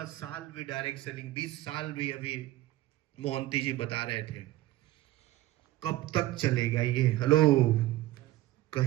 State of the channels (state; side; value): quieter; left; 16.3 dB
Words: साल भी डायरेक्ट सेलिंग, 20 साल भी, अभी मोहंती जी बता रहे थे। कब तक चलेगा ये? हेलो,